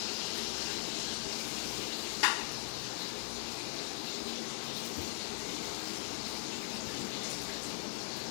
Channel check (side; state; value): right; silent; digital silence